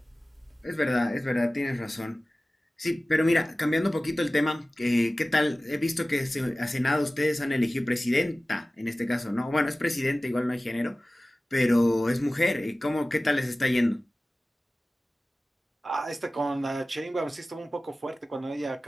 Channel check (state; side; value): normal; both; correlation 0.97